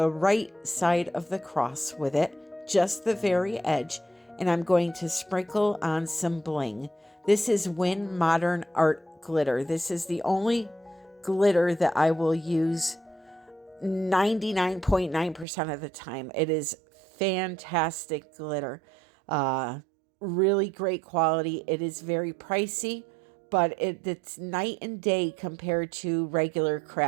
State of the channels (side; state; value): left; drops out; at 15.5 s